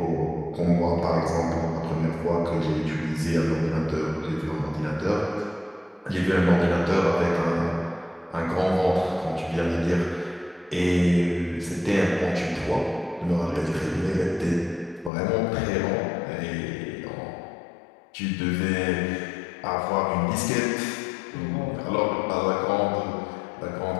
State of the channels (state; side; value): drops out; right; at 15.1 s